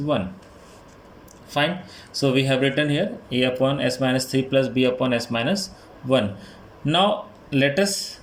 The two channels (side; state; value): both; identical; correlation 1.00